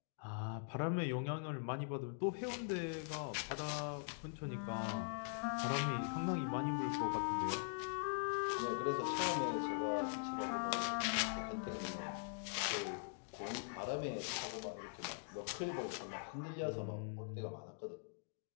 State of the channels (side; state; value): right; silent; digital silence